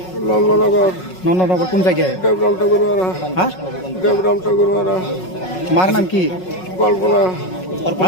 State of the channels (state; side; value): late; right; 5.4 ms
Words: नंदनगर, नंदनगर कौन जगह है? देवराम ठाकुरवाड़ा, हाँ, देवराम ठाकुरवाड़ा। मार नाम की कल्पना,